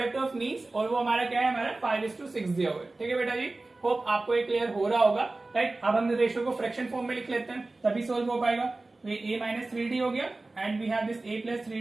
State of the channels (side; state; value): left; quieter; 3.2 dB